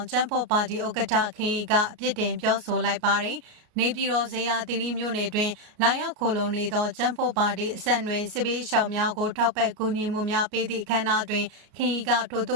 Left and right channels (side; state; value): left; late; 33 ms